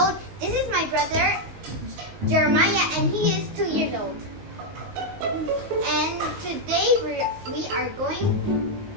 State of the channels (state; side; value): late; left; 18 ms